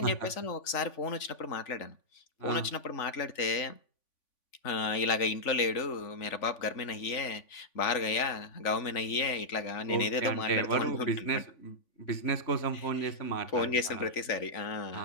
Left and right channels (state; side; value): late; right; 3.5 ms